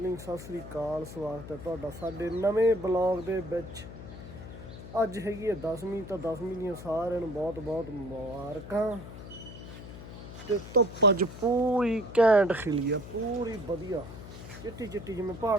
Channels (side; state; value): left; noise; hum, 13 dB below the sound